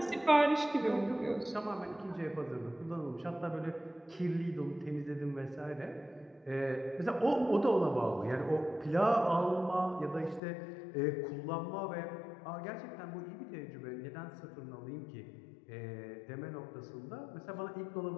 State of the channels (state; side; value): drops out; right; at 10.4 s